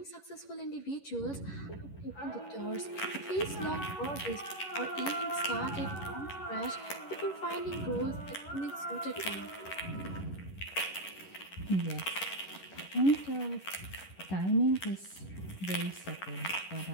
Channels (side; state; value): right; late; 11 ms